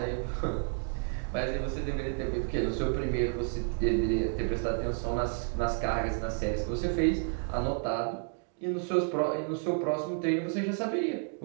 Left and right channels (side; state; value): left; silent; 57 dB below the other